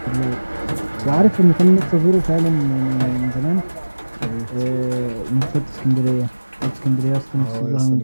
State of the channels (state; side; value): inverted; both; correlation -1.00